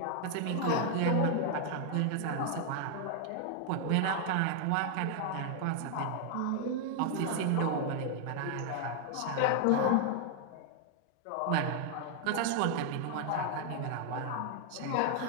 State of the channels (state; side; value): different; both; correlation 0.00